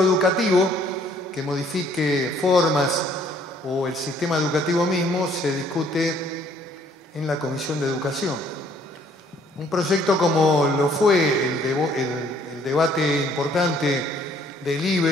que modifique formas o el sistema educativo mismo se discute en la Comisión de Educación. Un proyecto como lo fue el debate importante del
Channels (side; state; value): both; normal; correlation 0.62